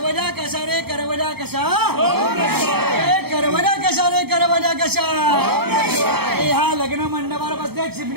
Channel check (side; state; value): left; late; 0.96 ms